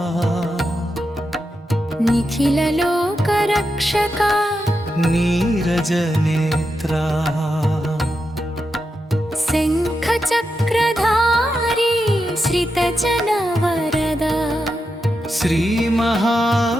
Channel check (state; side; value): normal; both; correlation 0.87